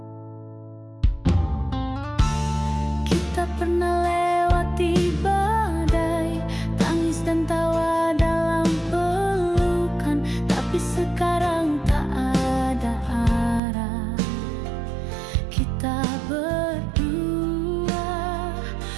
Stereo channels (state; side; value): drops out; left; at 13.6 s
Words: Kita pernah lewati badai, tangis dan tawa dalam pelukan. Tapi sekarang tak ada arah. Kita berdua